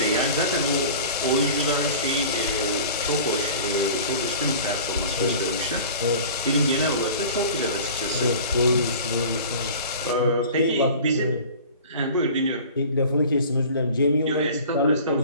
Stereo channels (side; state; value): both; inverted; correlation -0.42